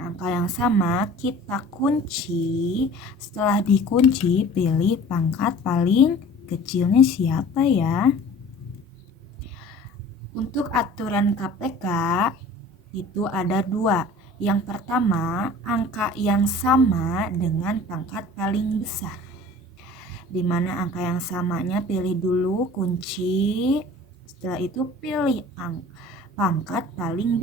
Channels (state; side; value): normal; both; correlation 0.44